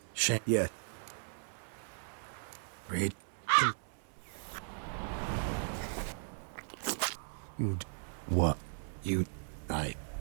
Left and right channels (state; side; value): silent; left; 53 dB below the other